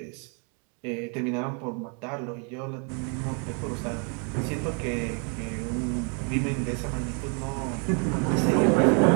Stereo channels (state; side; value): quieter; left; 38.7 dB